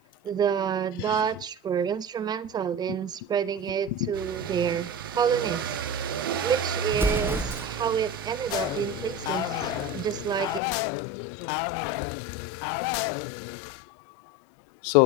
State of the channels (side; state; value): right; drops out; at 10.6 s